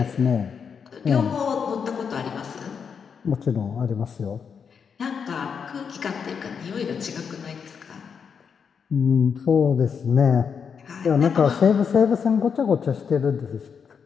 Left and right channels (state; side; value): quieter; right; 6.5 dB